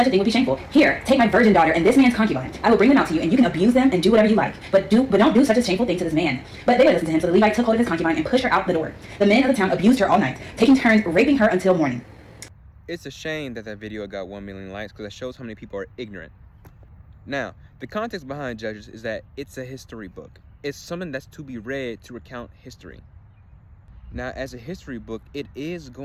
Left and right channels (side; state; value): both; identical; correlation 1.00